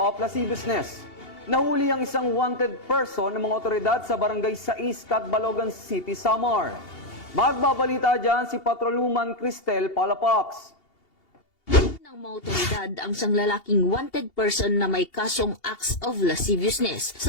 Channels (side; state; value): right; late; 2.8 ms